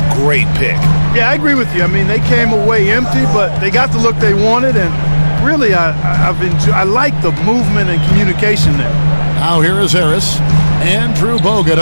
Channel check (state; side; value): inverted; both; correlation -1.00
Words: great pick. Yeah, I agree with you. I mean, they came away empty, but they got the look they wanted, and really, I like the movement and communication there. Now here is Harris. Andrew Bogut